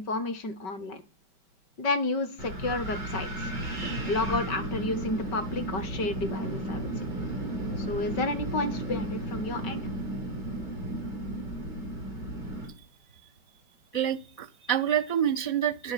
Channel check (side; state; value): right; late; 5.2 ms